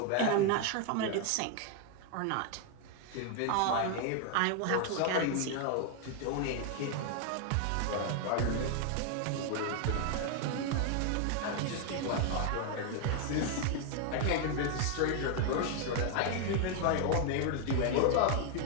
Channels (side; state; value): both; different; correlation 0.00